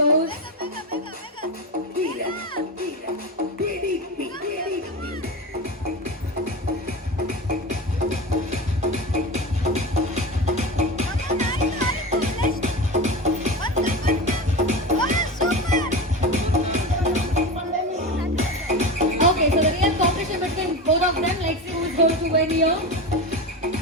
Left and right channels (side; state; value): both; normal; correlation 0.24